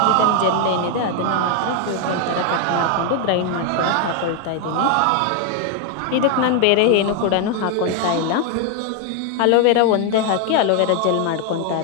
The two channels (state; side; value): different; both; correlation 0.01